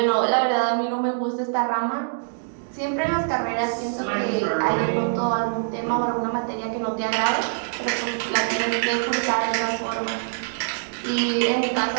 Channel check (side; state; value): left; silent; digital silence